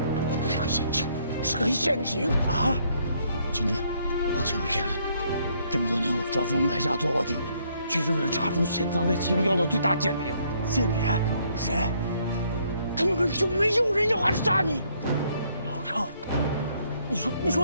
是个陷阱啊！金针，抱歉，这么多年我装疯卖傻做卧底，就是为了查出潜藏在701的最大间谍。间谍？谁？根本就没有人要暗杀你。老郑，你说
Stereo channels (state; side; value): inverted; both; correlation -0.69